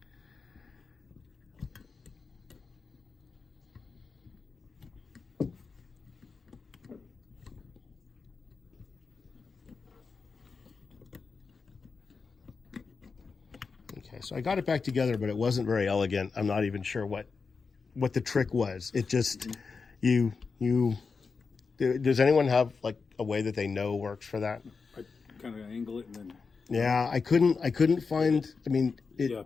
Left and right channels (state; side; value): quieter; right; 4.9 dB